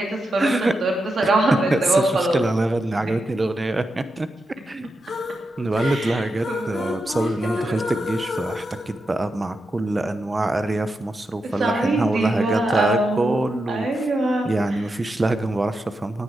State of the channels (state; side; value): normal; both; correlation 0.87